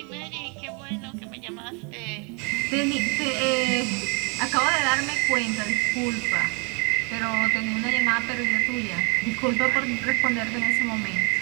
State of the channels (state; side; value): quieter; left; 34.1 dB